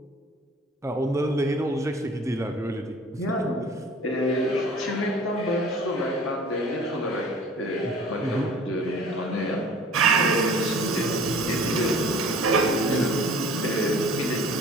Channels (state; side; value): normal; both; correlation 0.47